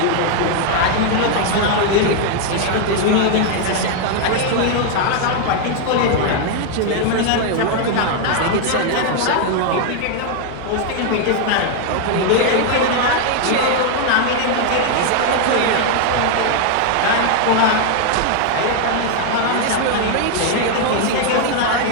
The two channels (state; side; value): different; both; correlation 0.00